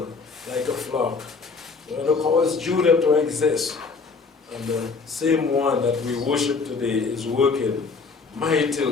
like a flock. The one who caused Judah to exist. And the same one that we worship today is working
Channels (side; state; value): right; quieter; 4.6 dB